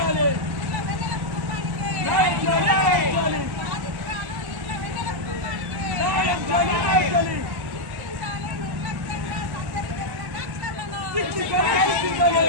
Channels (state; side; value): late; left; 1.1 ms